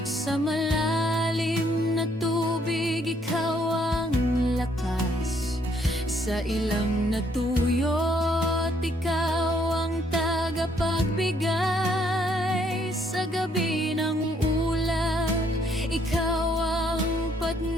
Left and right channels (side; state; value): both; normal; correlation 0.68